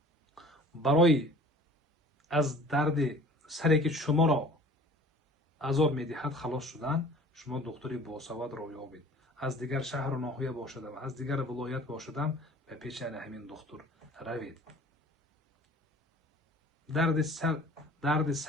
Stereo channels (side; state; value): both; normal; correlation 0.47